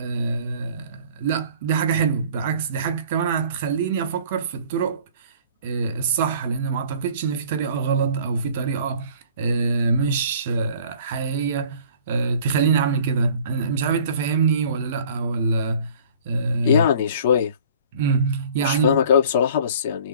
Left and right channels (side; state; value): both; inverted; correlation -0.50